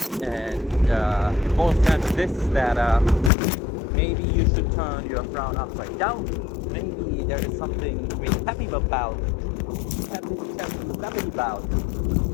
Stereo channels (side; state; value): right; drops out; at 3.3 s